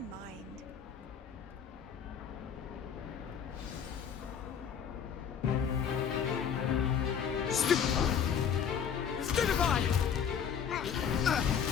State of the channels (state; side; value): quieter; right; 7.6 dB